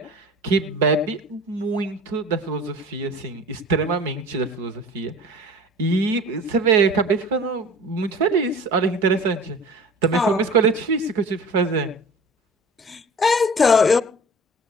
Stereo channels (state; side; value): normal; both; correlation 0.42